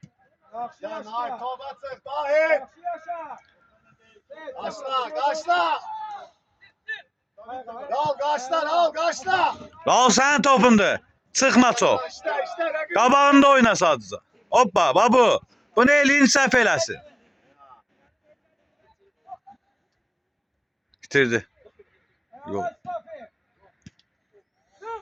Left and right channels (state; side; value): identical; both; correlation 1.00